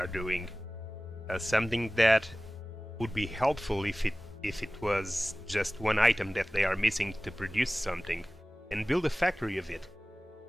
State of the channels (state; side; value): normal; both; correlation 0.98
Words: doing. Something that would be helpful if it was just one item that they are missing to produce something, and build a factory of it.